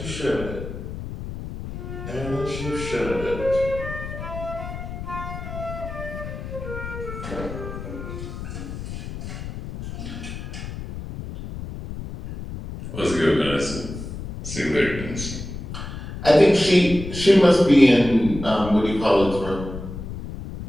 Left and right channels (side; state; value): left; noise; rumble, 9 dB below the sound